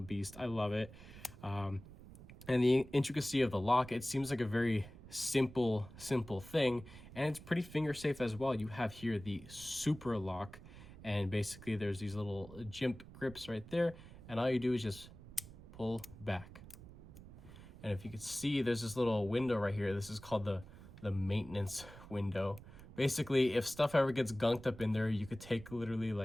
beast. I love it. And the intricacy of the lock, it seems like a very simple thing, and it's pretty finger safe as well. You have here the super lock, and basically there's these little jimp grips right there, and all you do is just pull back. And if you could see, there's this little window right here. This is called the maintenance window. Basically, if stuff ever gets gunked up in there, you could take literally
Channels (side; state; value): right; noise; rumble, 17 dB below the sound